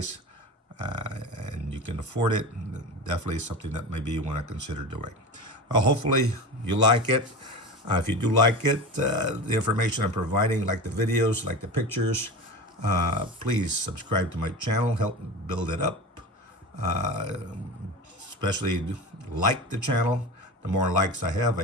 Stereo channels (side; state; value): both; normal; correlation 0.29